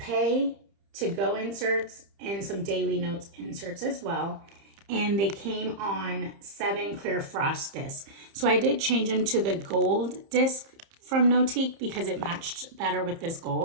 to go inserts, and some daily notes inserts as well. And they came on 7 Clearfrost discs. So I did change them to the gold disc from Notiq because it matched better with this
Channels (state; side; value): late; left; 30 ms